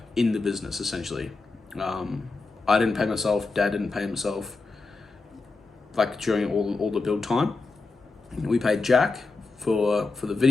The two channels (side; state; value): right; quieter; 3.8 dB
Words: in the business essentially. I didn't pay myself, Dad didn't pay himself, like during all the build time. We paid Jack for the